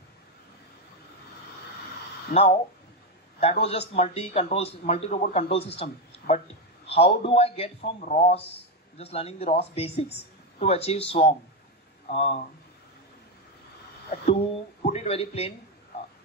Now, that was just multi-robot control system. But how do I get from ROS, just learning the ROS basics, to achieve swarm? To put it very plain,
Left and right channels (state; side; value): normal; both; correlation 0.08